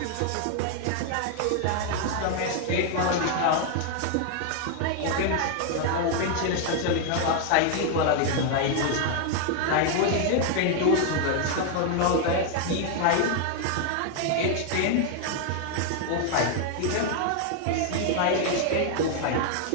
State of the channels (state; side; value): different; both; correlation 0.00